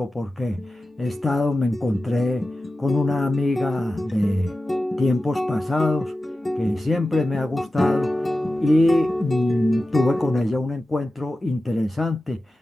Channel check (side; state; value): both; normal; correlation 0.93